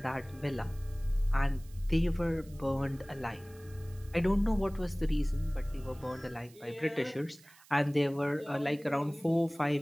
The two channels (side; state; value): right; noise; hiss, 25 dB below the sound